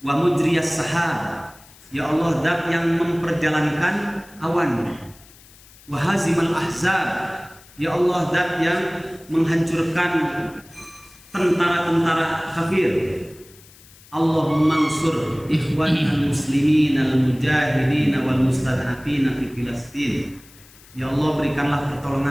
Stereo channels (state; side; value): noise; left; hiss, 24 dB below the sound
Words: Wa mujriyas sahab, ya Allah, zat yang memperjalankan awan. Wa hazimal ahzab, ya Allah, zat yang menghancurkan tentara-tentara kafir. Allahumma ansur ikhwanal muslimin al-mujahidin wal mustad'afin fi Filastin. Ya Allah, berikanlah